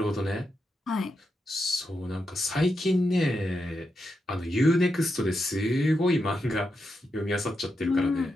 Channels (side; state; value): both; normal; correlation 0.85